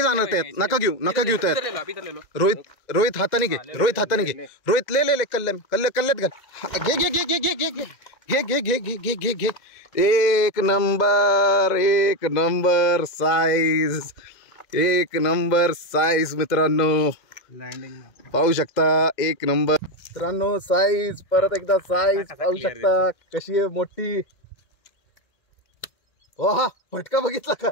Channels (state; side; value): late; right; 2.0 ms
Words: जाणार त्यात. नका घेऊ नका घेऊ त्यात. इधर ले लो, अभी इधर ले लो. रोहित हाताने घे, रोहित हाताने घे. रोहित ले ले ले कल्ल्यात घाल. घे घे घे घे घे घे घे घे घे घे घे घे घे. एक नंबर, एक नंबर साईज, एक नंबर साईज मित्रांनो. लँडिंग पाहू शकता एक नंबर मित्रांनो साईज. परत एकदा साईज पाहू शकता कशी आहे मोठी. हा फटका बघितला का?